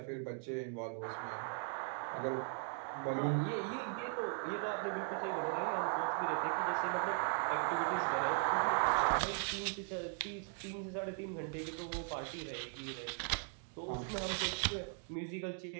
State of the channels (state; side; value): silent; left; 52 dB below the other